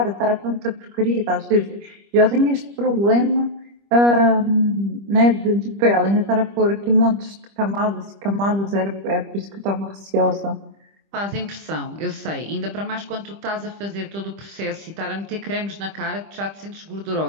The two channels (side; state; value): left; late; 25 ms